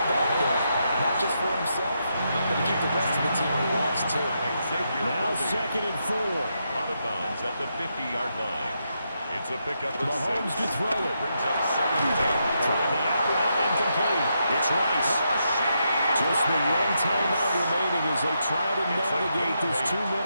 back there. Not just for himself, but to keep the rest of the team relaxed too. Now 2nd and 4. Out of bounds at the 50-yard line. It's a pickup of 6. Mahomes to throw it. Brings up 2nd down. Throwing the out route incomplete. It's Rice. Just Just the one timeout remaining as they try to navigate this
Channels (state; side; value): inverted; both; correlation -0.82